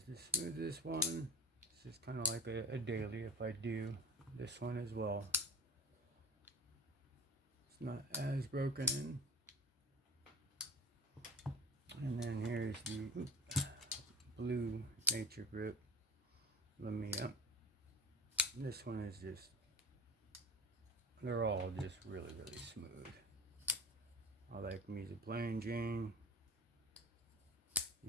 the smoothest one. This is kind of like a daily if I do this one as well. It's not as broken in. And then here's the blue Nature Grip Lamia. This one is just, they're all just really smooth. I like me the Plain Jane.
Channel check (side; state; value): both; normal; correlation 0.34